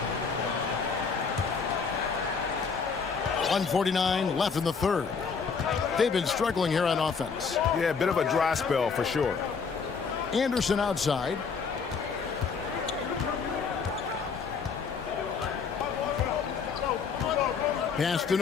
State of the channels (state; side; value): quieter; right; 5.6 dB